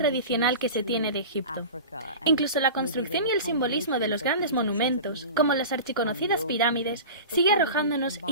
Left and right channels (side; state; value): both; inverted; correlation -0.33